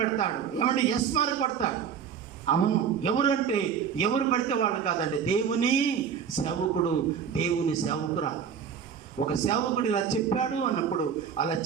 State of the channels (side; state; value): left; quieter; 7.4 dB